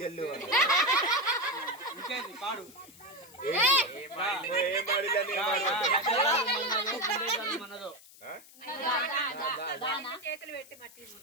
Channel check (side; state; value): left; noise; hiss, 22 dB below the sound